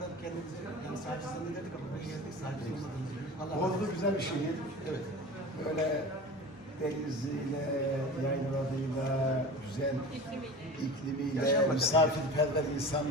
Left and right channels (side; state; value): both; normal; correlation 0.34